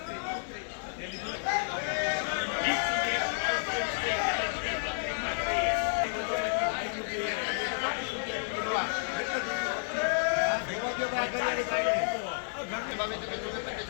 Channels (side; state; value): right; silent; digital silence